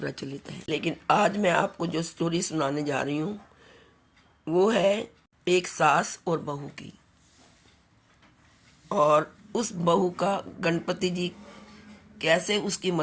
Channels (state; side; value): identical; both; correlation 1.00